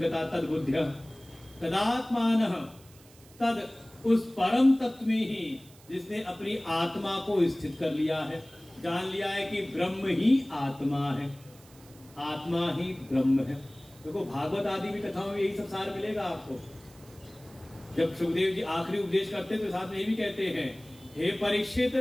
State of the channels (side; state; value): right; noise; hiss, 25 dB below the sound